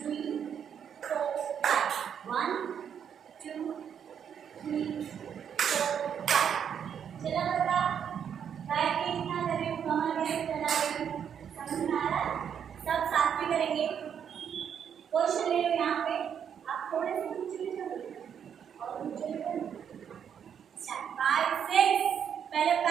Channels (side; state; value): left; quieter; 8.2 dB